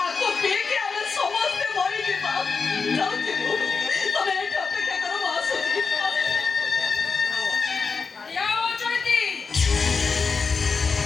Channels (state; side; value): quieter; right; 4.9 dB